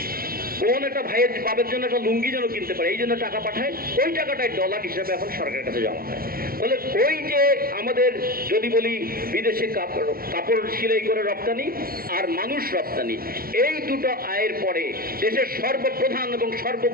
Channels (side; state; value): left; late; 0.43 ms